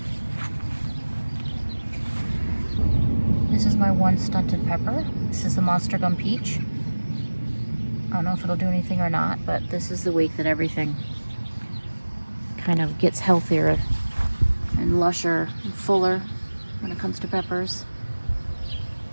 This is my one stunted pepper. This is the Monster Gum Peach. I don't know if it'll do anything or not, but this is the week that everything kind of gets healthier and lusher and fuller when it comes to peppers.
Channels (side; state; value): both; inverted; correlation -1.00